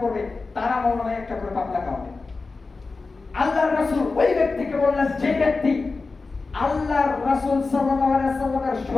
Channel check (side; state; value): right; quieter; 3.9 dB